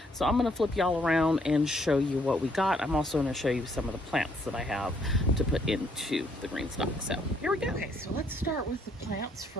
So I'm going to flip y'all around and show you what we got. I'm also going to show you some of the plants that I have to put into the GreenStalk. So here we go. Okay, so let's start with the plants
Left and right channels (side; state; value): both; normal; correlation 0.69